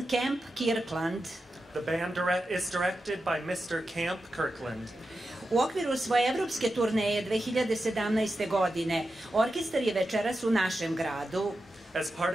Camp Kirkland. The band is directed by Mr. Camp Kirkland. U okviru svoje evropske turneje 2017. godine, orkestar je večeras u našem gradu. As part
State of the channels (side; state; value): both; normal; correlation 0.90